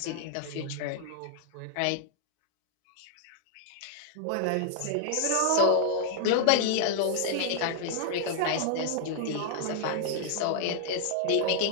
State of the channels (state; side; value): different; both; correlation -0.01